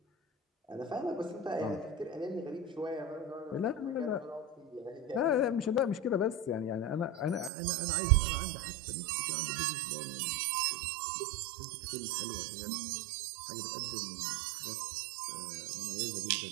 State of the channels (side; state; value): left; drops out; at 7.5 s